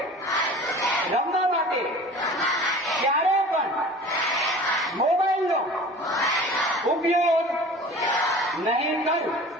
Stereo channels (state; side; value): normal; both; correlation 0.41